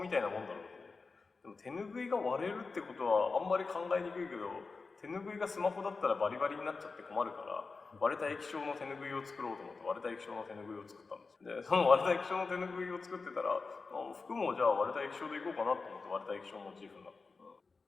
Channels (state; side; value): quieter; right; 4.2 dB